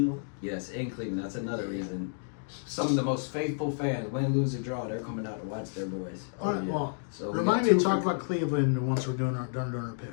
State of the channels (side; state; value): right; silent; digital silence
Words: Yes, in Cleveland. That's another reason. Some of the most faithful fans, win, lose, or draw, they're coming out to watch their boys. All right, yeah. well, So we remind got me to two talk for- about Cleveland once we're doing our